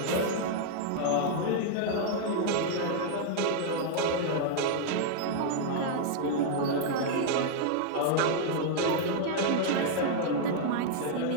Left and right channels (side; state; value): both; different; correlation -0.01